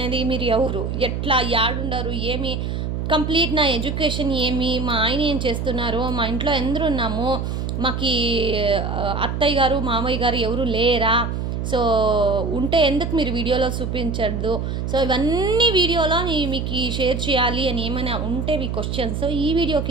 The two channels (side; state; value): right; noise; hum, 3 dB below the sound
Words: మీరు ఎవరు, ఎట్లా, యాడుండరు, ఏమి, కంప్లీట్ నా ఎడ్యుకేషన్ ఏమి, మా ఆయన ఏం చేస్తున్నారు, మా ఇంట్లో ఎందరు ఉన్నాము, మాకు అత్తయ్య గారు మామయ్య గారు ఎవరు లేరా, ఉంటే ఎందుకు మీరు వీడియోలో చూపించద్దు. ఇవన్నీ వీడియోలో మీకు షేర్ చేయాలి అని ఏమైనా ఉంటే మీ క్వశ్చన్స్ ఈ వీడియో